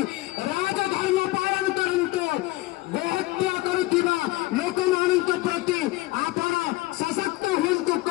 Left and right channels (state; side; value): quieter; right; 19.0 dB